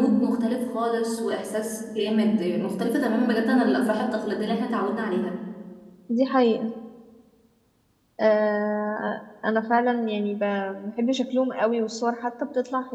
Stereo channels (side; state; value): both; identical; correlation 1.00